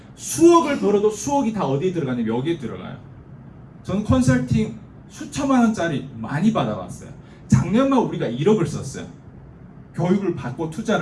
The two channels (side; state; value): both; identical; correlation 1.00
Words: 수억을 벌어도 수억이 다 어디에 들어가냐면 여기에 들어가요. 저는 컨설팅 수천만 원짜리 많이 받아봤어요. 작년만 우리가 1억을 썼어요. 교육을 받고